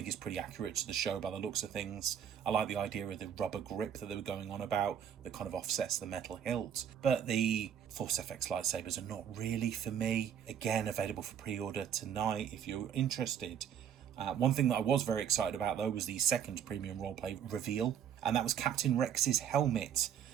it's pretty accurate to the show by the looks of things. I like the idea of the rubber grip that they were going on about that kind of offsets the metal hilt. But the Force FX lightsabers are not really for me. Again, available for pre-order tonight if you're interested. One thing that I was very excited about though was the second premium roleplay reveal, and that was Captain Rex's helmet.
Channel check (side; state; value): left; quieter; 8.8 dB